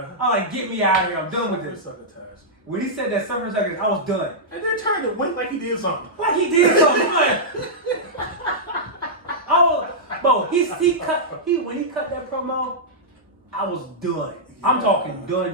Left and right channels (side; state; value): both; normal; correlation -0.11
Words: I'm like, get me out of here. I'm done with this. When he said that "suffer and suck," I was done. And then turned to wink like he did something. Like he did something. Bro, when he cut that promo, I was done. I'm talking